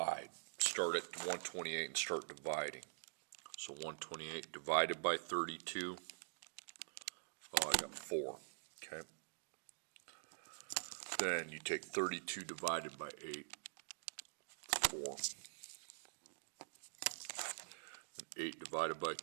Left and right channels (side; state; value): left; silent; digital silence